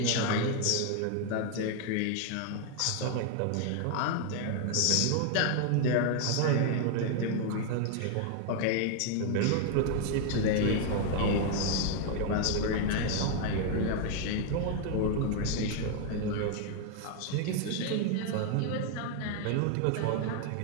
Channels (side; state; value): both; different; correlation 0.00